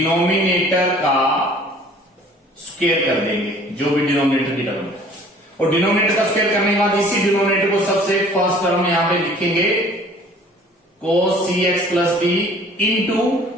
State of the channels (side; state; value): both; normal; correlation 0.51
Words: का स्क्वायर कर देंगे, जो भी डिनोमिनेटर की टर्म है। और डिनोमिनेटर का स्क्वायर करने के बाद इसी डिनोमिनेटर को सबसे फर्स्ट टर्म यहां पे लिखेंगे cos cx plus d into